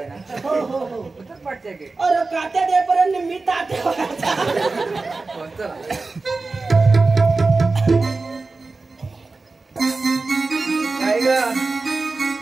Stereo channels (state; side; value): quieter; left; 3.7 dB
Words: ना. हो हो हो. पाठच्या घेत. अरे कात्या देपर्यंत मी तात्या. चला काय ग